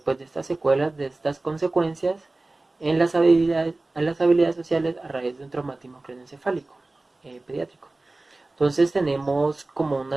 estas secuelas, de estas consecuencias en las habilidades sociales a raíz de un traumatismo craneoencefálico pediátrico. Entonces tenemos como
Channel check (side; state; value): left; quieter; 3.0 dB